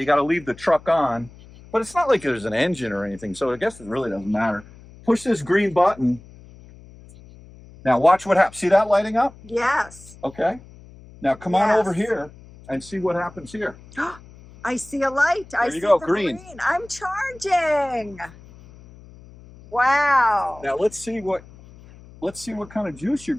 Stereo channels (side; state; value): left; noise; hum, 21 dB below the sound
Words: got to leave the truck on. But it's not like there's an engine or anything, so I guess it really doesn't matter. Push this green button. Now, watch what happens. See that lighting up? Yes. Okay. Now, come on over here and see what happens here. I see a light. I see go, the green. I'm charging. Wow. Now let's see what kind of juice you're